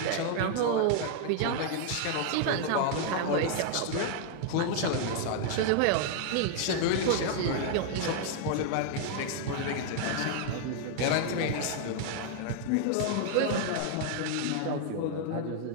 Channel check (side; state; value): both; different; correlation 0.00